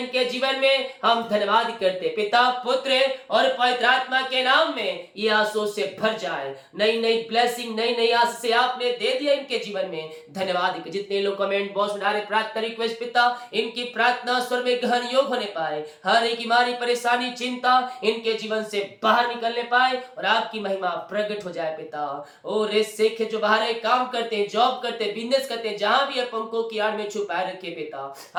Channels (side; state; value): both; identical; correlation 1.00